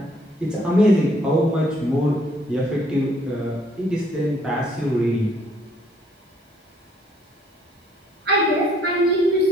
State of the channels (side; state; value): both; normal; correlation 0.64